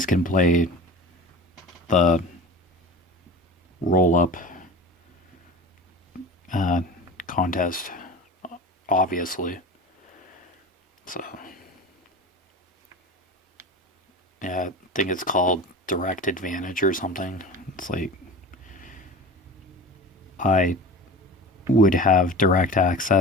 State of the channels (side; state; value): both; normal; correlation 0.34